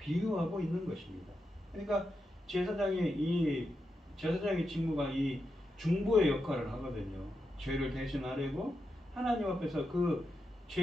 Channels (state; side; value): normal; both; correlation 0.86